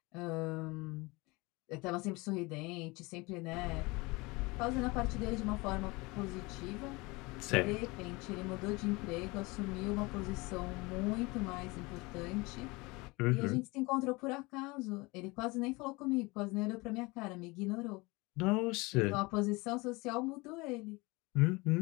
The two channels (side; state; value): right; quieter; 24.5 dB